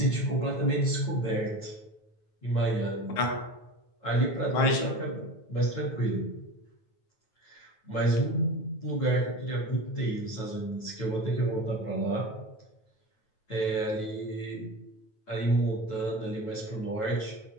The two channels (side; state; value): right; late; 9.2 ms